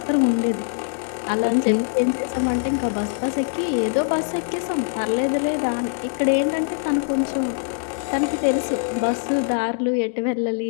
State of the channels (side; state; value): right; silent; digital silence